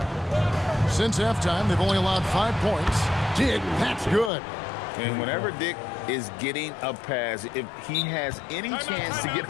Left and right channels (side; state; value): right; drops out; at 4.3 s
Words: Since halftime, they've only allowed 5 points. Dick, that's good. And whenever Dick is getting a pass, if he has any chance to get